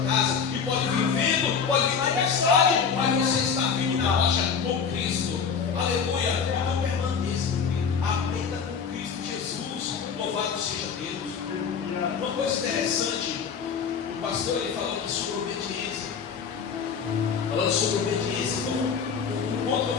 casa. E pode vir vento, pode vir tempestade, mas você está firme na rocha com Cristo. Aleluia. Então permaneça, aprenda com Cristo Jesus. Louvado seja Deus. Uma coisa interessante, o pastor ele falou aqui sobre obediência. Falando sobre obediência, então o ponto eu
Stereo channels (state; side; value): quieter; right; 6.4 dB